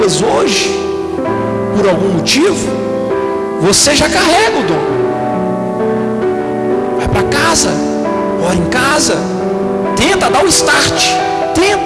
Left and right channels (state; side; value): identical; both; correlation 1.00